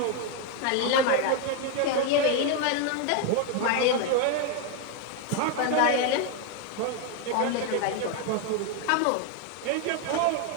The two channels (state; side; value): different; both; correlation 0.01